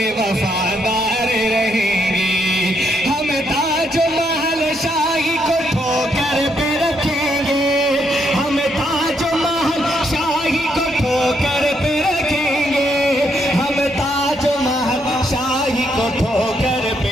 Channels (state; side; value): normal; both; correlation 0.76